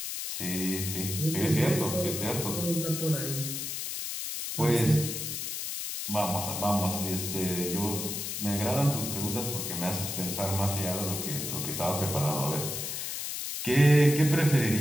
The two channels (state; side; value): noise; left; hiss, 4 dB below the sound